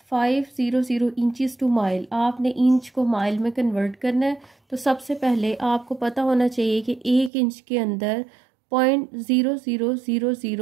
इंचज़ टू माइल। आपने इंच को माइल में कन्वर्ट करना है, तो सबसे पहले आपको पता होना चाहिए कि 1 इंच के अंदर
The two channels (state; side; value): drops out; left; at 7.3 s